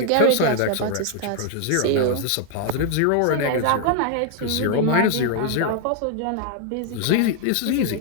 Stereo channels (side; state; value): both; different; correlation 0.00